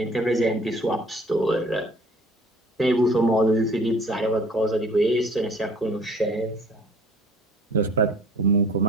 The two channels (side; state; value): both; normal; correlation 0.52